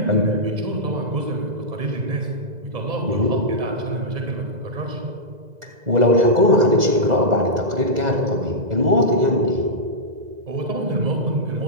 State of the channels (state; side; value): late; left; 2.0 ms